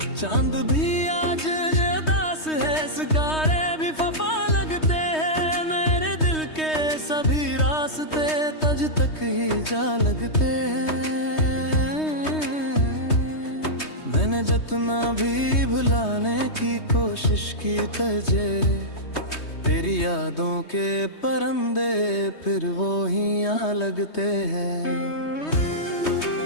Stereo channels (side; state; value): right; late; 3.2 ms